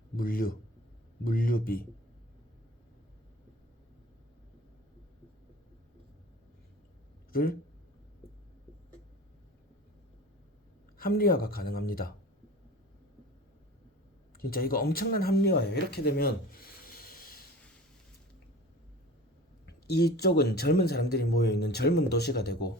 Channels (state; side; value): normal; both; correlation 0.39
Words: 물류비 를 합리화가 가능합니다. 진짜 이거 엄청난 합리화예요. 이렇게 되면 이쪽은 젊은 사람들이 모여있는 젊은 도시가 되고,